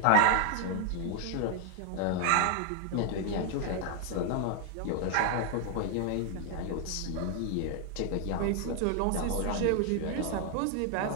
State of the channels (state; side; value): different; both; correlation 0.00